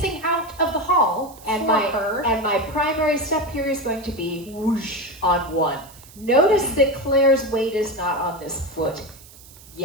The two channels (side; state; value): right; noise; hiss, 21 dB below the sound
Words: out of the hall and her. And my primary step here is going to be whoosh on 1. Notice that Claire's weight is not on this foot